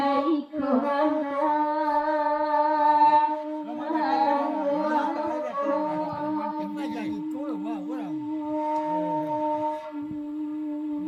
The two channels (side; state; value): both; identical; correlation 1.00